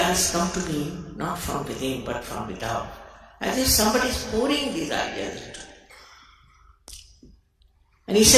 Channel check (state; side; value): identical; both; correlation 1.00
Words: come to me not from within but from without. As if somebody is pouring these ideas into me. And he